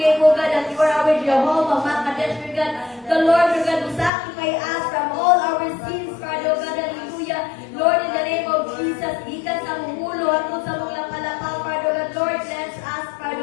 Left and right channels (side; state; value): right; drops out; at 4.1 s